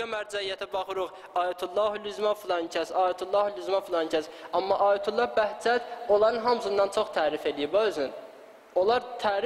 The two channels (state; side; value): identical; both; correlation 1.00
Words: mərcəiyyətə baxırıq, Ayətullahül-Üzma filan kəs, Ayətullahül-Üzma filan kəs. Amma Ayətullah Bəhcət onların hamısından çox tərif edib özün. Onlar